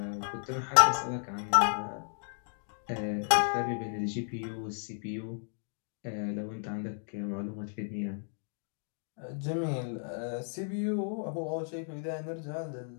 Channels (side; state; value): right; silent; digital silence